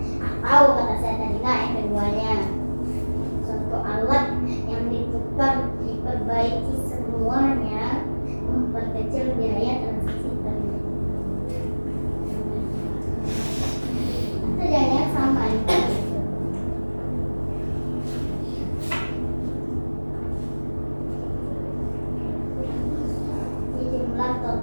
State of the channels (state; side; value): inverted; both; correlation -1.00